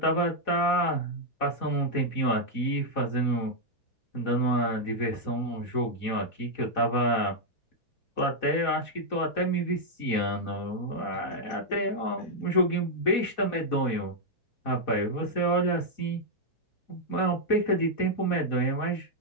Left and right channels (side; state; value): right; late; 4.1 ms